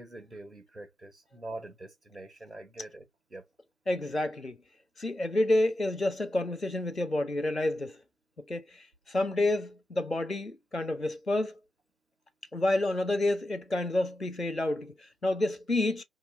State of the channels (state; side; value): normal; both; correlation 0.90